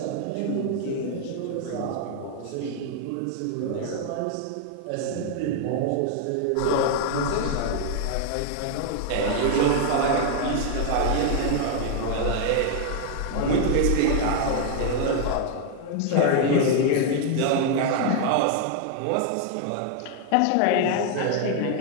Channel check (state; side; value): different; both; correlation 0.00